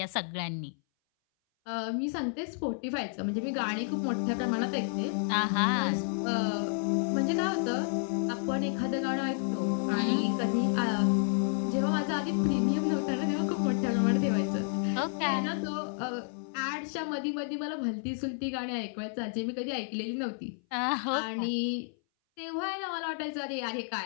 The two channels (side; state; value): right; silent; 57 dB below the other